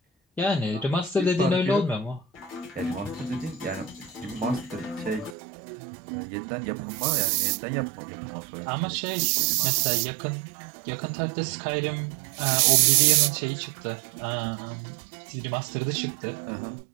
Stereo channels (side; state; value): left; drops out; at 5.4 s